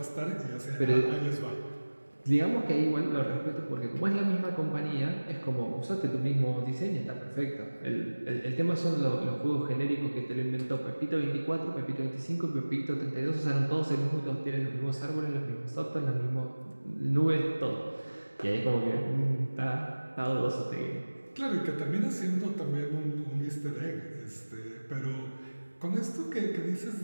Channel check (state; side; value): inverted; both; correlation -1.00